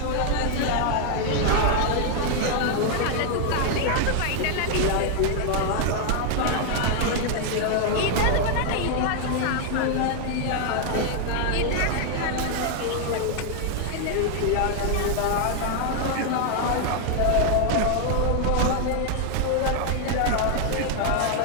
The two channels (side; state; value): both; different; correlation 0.00